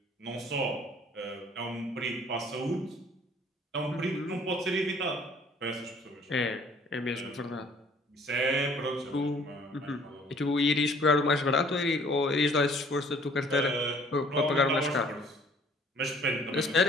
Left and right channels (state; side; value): normal; both; correlation 0.57